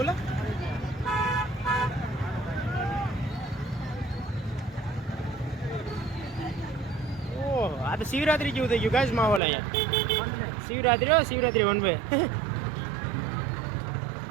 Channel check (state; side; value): drops out; left; at 9.4 s